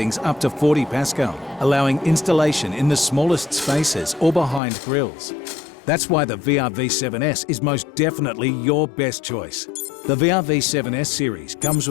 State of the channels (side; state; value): right; drops out; at 4.6 s